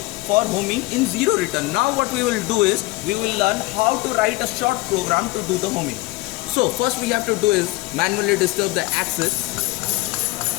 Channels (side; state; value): right; quieter; 21.0 dB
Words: for homing in zero return. Now what we will do is we will learn how to write a short program to do the homing. So first we have to do is manually disturb the axis.